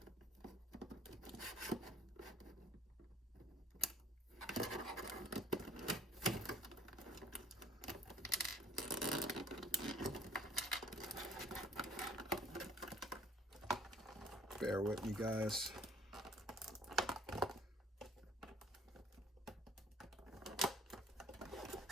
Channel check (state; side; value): normal; both; correlation 0.56